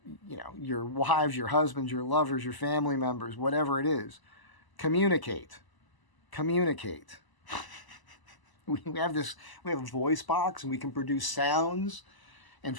your wives, your husbands, your lovers, your family members, whatever it is. Communicate. Communicate. We have a voice box and we can produce sounds and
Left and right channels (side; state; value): right; late; 1.0 ms